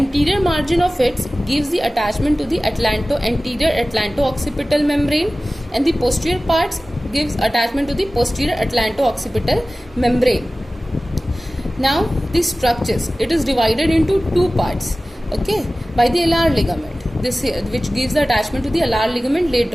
margin of it gives the attachment to the anterior atlanto-occipital membrane, and the posterior parts gives attachment to the posterior atlanto-occipital membrane. Now the structures, it is divided into two parts, okay, by the alar ligament, this here, which gives the attachment to the alar ligament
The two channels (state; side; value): normal; both; correlation 0.97